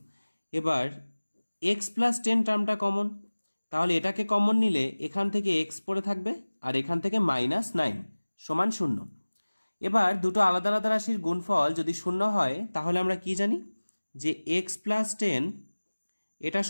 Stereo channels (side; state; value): both; inverted; correlation -1.00